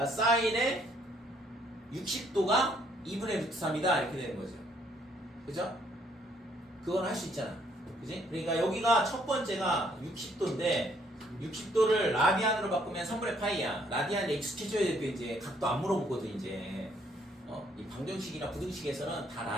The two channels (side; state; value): both; normal; correlation 0.67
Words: 사인의 60도가 2분의 루트 3이다 이렇게 되는 거죠. 그죠? 그건 할 수 있잖아. 그지? 그러니까 여기가 첫 번째가 60도인데 60도를 라디안으로 바꾸면 3분의 파이야. 라디안에 익숙해져야 될 때 이제 각도 안 물어보거든 이제. 이 방정식이나 부등식에서는 다